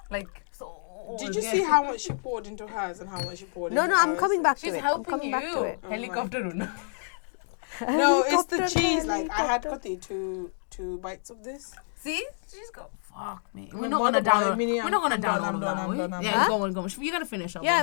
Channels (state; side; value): silent; right; digital silence